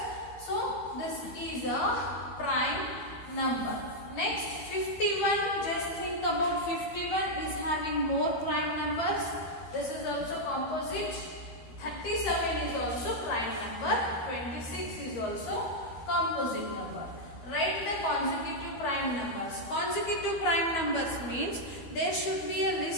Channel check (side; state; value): right; late; 12 ms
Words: So this is a prime number. Next, 51. Just think about 51 is having more prime numbers. This is also composite. 37 is also prime number. 26 is also composite number. Write the consecutive prime numbers. Consecutive prime numbers means there should be a